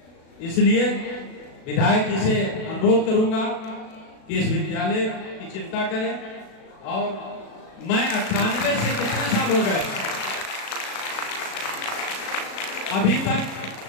इसलिए विधायक जी से अनुरोध करूंगा कि इस विद्यालय की चिंता करें। और मैं 98 से कितने साल हो गए, अभी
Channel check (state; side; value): late; right; 37 ms